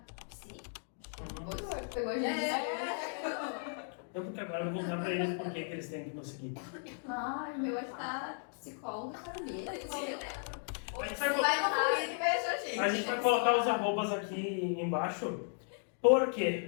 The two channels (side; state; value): right; silent; 54 dB below the other